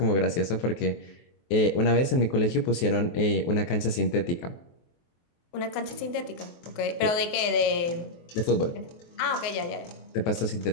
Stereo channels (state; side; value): late; right; 23 ms